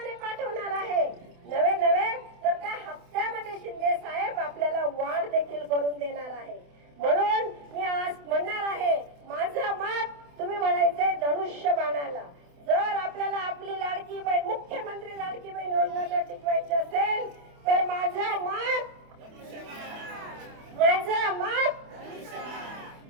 पाठवणार आहे. नवे तर त्या हप्त्यामध्ये शिंदे साहेब आपल्याला वाढ देखील करून देणार आहे. म्हणून मी आज म्हणणार आहे, माझं मत तुम्ही म्हणायचंय धनुष्यबाणाला. जर आपल्याला आपली लाडकी बहीण, मुख्यमंत्री लाडकी बहीण योजना जर टिकवायची असेल तर माझं मत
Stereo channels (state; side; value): late; left; 28 ms